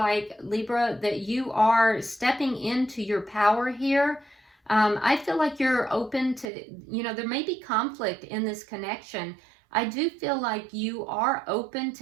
Libra, that you are stepping into your power here. I feel like you're open to, there may be conflict in this connection. I do feel like you are open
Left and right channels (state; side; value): drops out; left; at 6.5 s